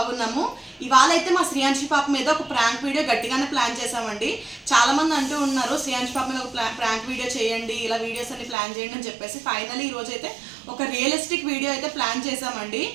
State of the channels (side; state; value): left; drops out; at 8.6 s